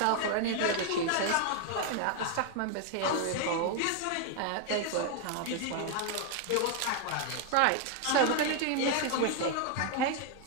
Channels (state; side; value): different; both; correlation 0.00